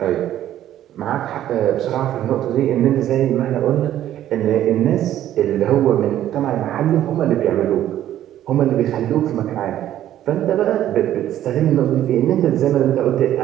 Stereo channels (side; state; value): left; quieter; 12.2 dB